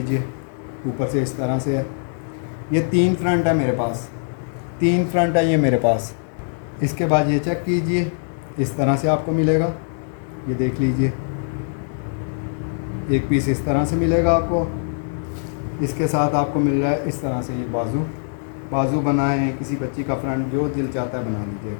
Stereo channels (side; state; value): right; silent; digital silence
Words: ऊपर से इस तरह से है। ये 3 फ्रंट है मेरे पास, 3 फ्रंट है ये मेरे पास। इसके बाद ये चेक कीजिए, इस तरह से आपको मिलेगा, ये देख लीजिए। एक पीस इस तरह से मिलेगा आपको। इसके साथ आपको मिल रहा है इस तरह से ये बाजू बनाए, किसी बच्ची का फ्रंट जो दिल चाहता है बना